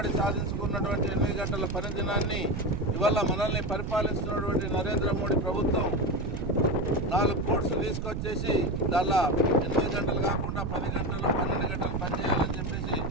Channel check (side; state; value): right; noise; rumble, 3 dB below the sound